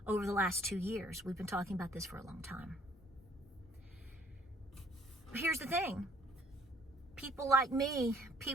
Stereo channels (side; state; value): both; normal; correlation 0.60